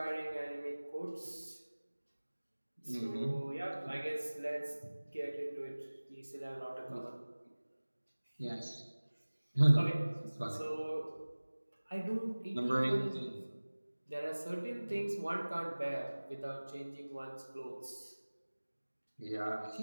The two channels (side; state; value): both; inverted; correlation -1.00